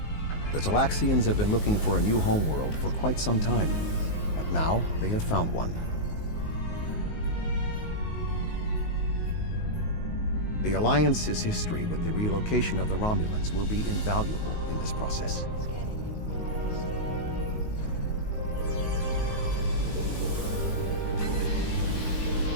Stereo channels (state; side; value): late; right; 19 ms